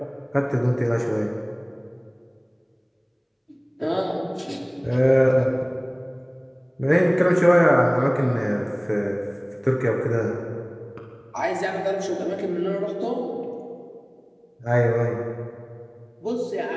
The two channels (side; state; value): both; identical; correlation 1.00